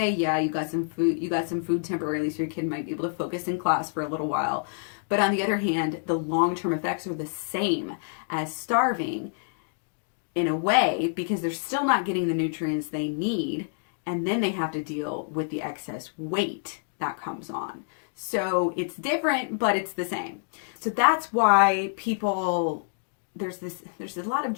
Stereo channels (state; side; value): silent; right; digital silence